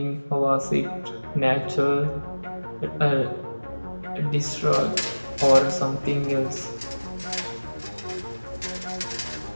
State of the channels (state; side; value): inverted; both; correlation -1.00